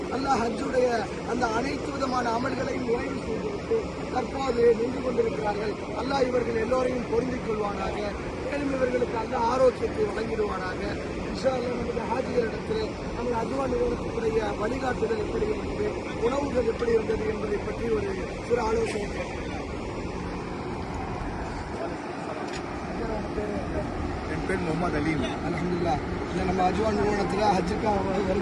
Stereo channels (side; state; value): both; identical; correlation 1.00